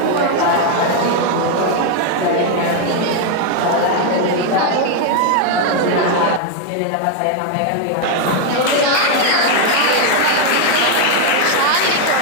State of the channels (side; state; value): both; different; correlation 0.01